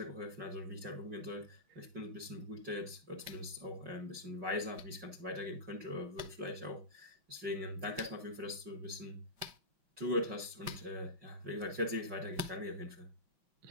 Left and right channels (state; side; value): late; left; 5.5 ms